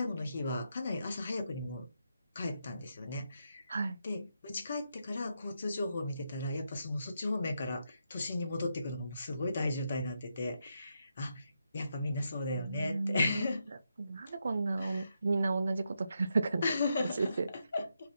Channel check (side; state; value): both; inverted; correlation -0.82